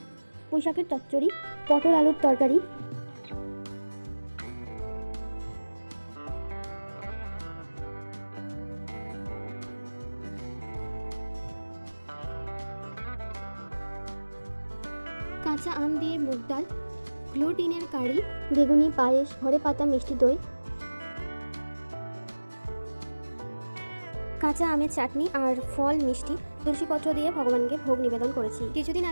পুঁইশাকের চচ্চড়ি, পটল আলুর তরকারি, কাঁচা আম দিয়ে মুগ ডাল, গ্লুটিনের কারি, বেগুনি পায়েস, ঘরে পাতা মিষ্টি দই, কাঁচা আমের চাটনি আর ফল মিষ্টি, তুলসীপত্র দিয়ে ভগবানকে ভোগ নিবেদন করেছি। কিছুদিন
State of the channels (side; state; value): both; inverted; correlation -1.00